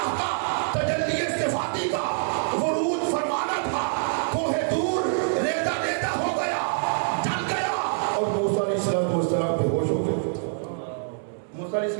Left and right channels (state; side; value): silent; left; digital silence